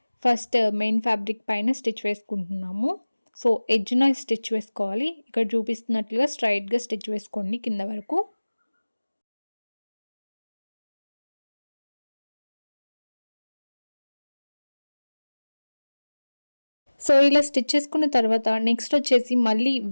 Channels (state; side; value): inverted; both; correlation -1.00